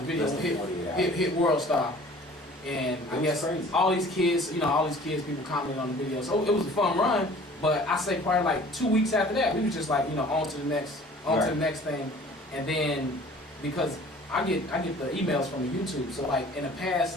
video Less than 48 hours. hit World Star, and I It was guess crazy. all these kids, people commented on the video. So it was a fun run. But I say probably like 2 weeks after that, we was just like on to the next thing, and then because I get the emails from the YouTube. So like in the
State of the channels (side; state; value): both; normal; correlation 0.49